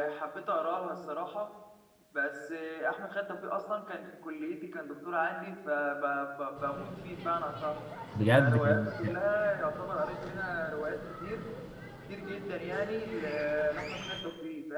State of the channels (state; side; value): identical; both; correlation 1.00